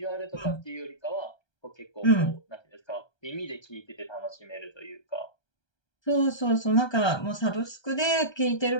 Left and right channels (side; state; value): right; late; 1.3 ms